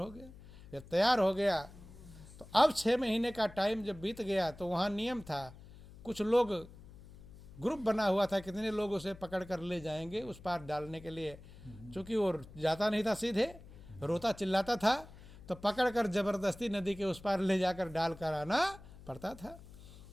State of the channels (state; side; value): noise; left; hum, 18 dB below the sound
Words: गया। जब तैयार हो गया तो अब 6 महीने का टाइम जब बीत गया तो वहाँ नियम था, कुछ लोग ग्रुप बना हुआ था, कितने लोग उसे पकड़ कर ले जाएंगे उस पार डालने के लिए। चूँकि वो जाता नहीं था, सीधे रोता चिल्लाता था, तो पकड़ कर जबरदस्ती नदी के उस पार ले जाकर डाल कर आना पड़ता था।